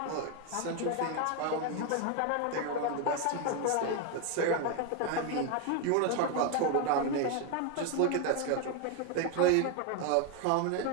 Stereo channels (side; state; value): both; different; correlation 0.01